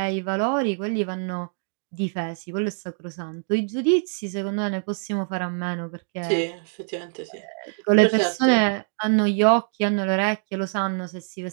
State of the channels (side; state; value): left; silent; 62 dB below the other